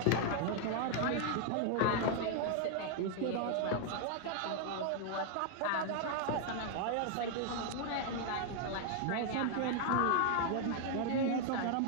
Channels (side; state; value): both; different; correlation 0.00